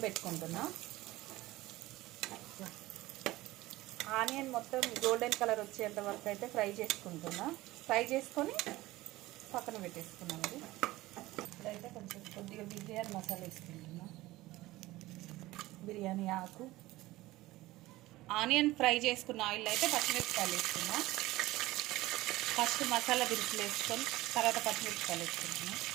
పెట్టుకుంటున్నా. ఆనియన్ మొత్తం గోల్డెన్ కలర్ వచ్చేంత వరకు అయితే ఫ్రై చేసుకుంటున్నా. ఫ్రై చేసుకొని పక్కన పెట్టేసుకున్నాం. ఇప్పుడైతే కొంచెం కొద్దిగా బిర్యానీ మసాలా వేసుకుంటున్నా. బిర్యానీ ఆకు, ఆనియన్ ఫ్రై చేసుకున్న ఆయిల్ అయితే పచ్చిమిరపకాయలు వేసుకున్నా. ఫస్ట్ మసాలా దినుసులు వేసుకొని తర్వాత పచ్చిమిరపకాయలు వేసుకుంటున్నా.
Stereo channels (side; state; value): left; quieter; 18.2 dB